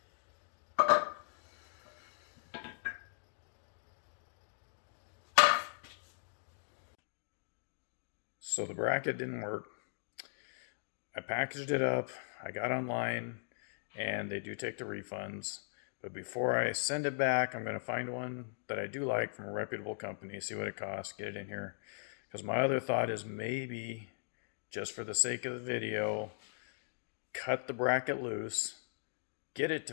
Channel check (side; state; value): right; silent; digital silence